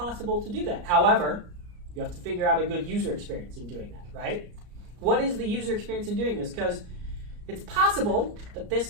to do that. However, you have to figure out a good user experience in doing that, right? What is the user experience in doing this? Because it's possible that this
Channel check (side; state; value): left; late; 34 ms